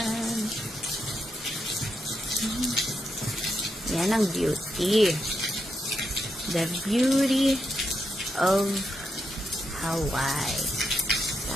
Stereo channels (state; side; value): normal; both; correlation 0.83